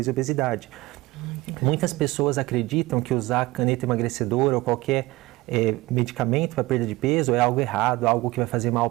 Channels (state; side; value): quieter; left; 20.7 dB